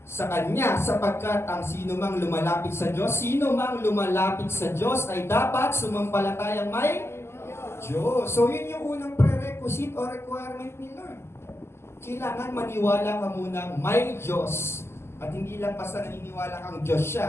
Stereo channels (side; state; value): right; late; 0.12 ms